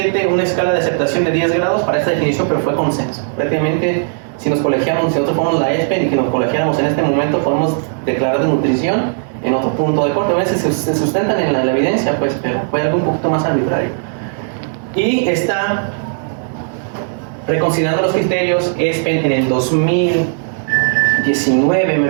una escala de aceptación de 10 grados para esta definición, pero fue consenso. Prácticamente, si nos colegiamos, si nosotros fuéramos la ESPEN y que nos colegiáramos en este momento, podemos declarar de nutrición en otro punto de corte. A veces se sustentan en la evidencia, pues, pero fue algo un poquito más arbitrario. Y está reconsiderando los criterios ESPEN en el 2019, me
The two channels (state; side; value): silent; left; digital silence